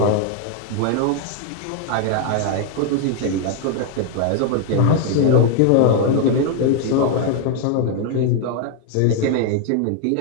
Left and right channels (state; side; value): different; both; correlation 0.00